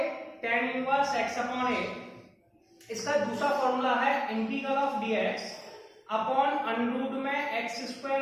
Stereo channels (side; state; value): both; identical; correlation 1.00